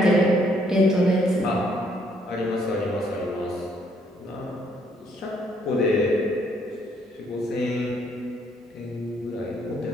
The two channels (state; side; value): normal; both; correlation 0.68